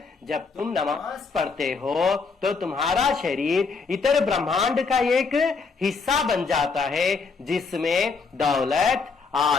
जब तुम नमाज पढ़ते हो तो तुम्हारा शरीर इतर ब्रह्मांड का एक हिस्सा बन जाता है, जिसमें दौलत,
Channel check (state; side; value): quieter; right; 4.7 dB